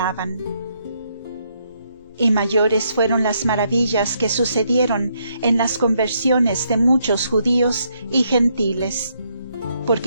Y mayores fueron las maravillas que sucedieron en las conversiones de muchos judíos y gentiles,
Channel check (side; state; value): both; inverted; correlation -0.75